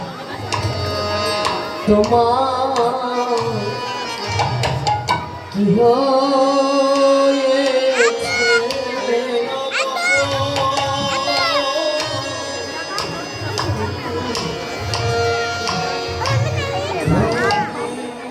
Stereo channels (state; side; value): identical; both; correlation 1.00